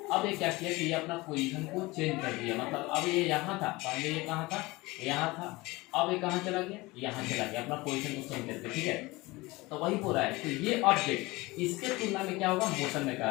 अब ये क्या किया कि ये अपना पोजीशन को चेंज कर दिया, मतलब अब ये यहाँ था, पहले ये कहाँ था, यहाँ था, अब ये कहाँ चला गया, यहाँ चला गया, अपना पोजीशन को चेंज करके, ठीक है। तो वही बोल रहा है, तो ये ऑब्जेक्ट इसके तुलना में क्या होगा, मोशन में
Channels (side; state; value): right; quieter; 21.9 dB